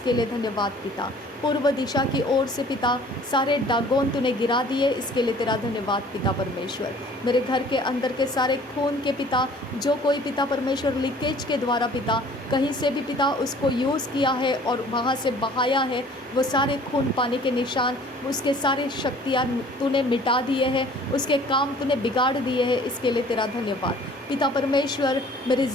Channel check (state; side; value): normal; both; correlation 0.51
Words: लिए धन्यवाद पिता। पूर्व दिशा की ओर से पिता सारे डागोन तूने गिरा दिए, इसके लिए तेरा धन्यवाद पिता परमेश्वर। मेरे घर के अंदर के सारे खून के पिता, जो कोई पिता परमेश्वर लीकेज के द्वारा पिता कहीं से भी पिता उसको यूज़ किया है और वहाँ से बहाया है, वो सारे खून पाने के निशान, उसके सारे शक्तियाँ तूने मिटा दिए हैं, उसके काम तूने बिगाड़ दिए हैं, इसके लिए तेरा धन्यवाद पिता परमेश्वर। मेरी